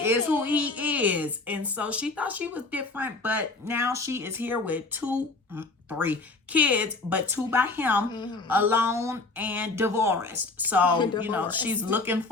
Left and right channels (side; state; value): right; quieter; 3.5 dB